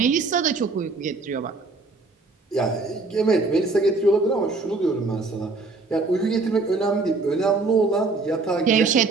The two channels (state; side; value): quieter; left; 3.7 dB